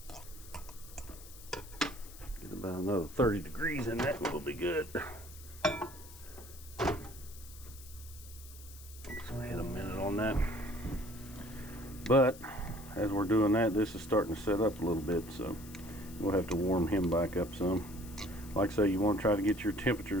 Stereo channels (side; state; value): left; noise; hiss, 18 dB below the sound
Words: Get about another 30 degrees in that, will be good. So I had a minute on that. But as we're doing that, this is starting to set up a little bit, so we'll have to warm him back up some. Like I say, you want to try to get your